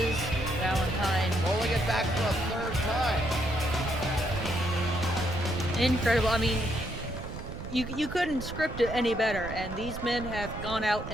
Valentine. Rolling it back for a third time. Incredible. I mean, you couldn't script it any better, and these men have gone out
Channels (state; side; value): noise; right; rumble, 9 dB below the sound